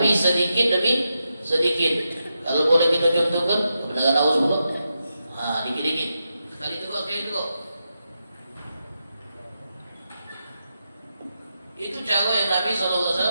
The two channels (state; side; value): inverted; both; correlation -0.87